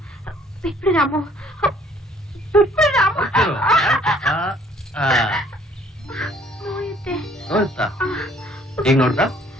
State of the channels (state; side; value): normal; both; correlation 0.60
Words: ಬಿಟ್ಬಿಡು ರಾಮು, ಬಿಟ್ಬಿಡು ರಾಮು. ನೋಯುತ್ತೆ. ನೋಡ್ತಾ ಈಗ ನೋಡ್ದ